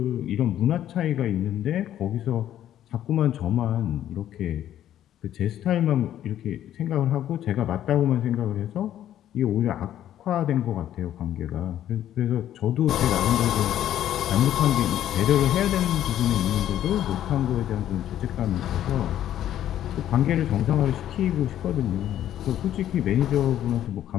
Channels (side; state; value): right; quieter; 11.6 dB